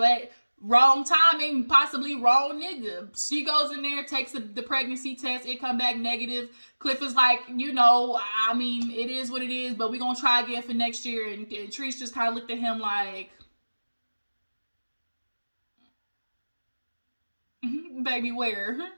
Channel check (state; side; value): inverted; both; correlation -1.00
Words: wrong timing, possibly wrong nigga. She goes in there, takes the pregnancy test, it come back negative. Cliff is like, I mean, it is what it is, but we're gonna try again for next year. And Treese just kind of looked at him like, baby, where?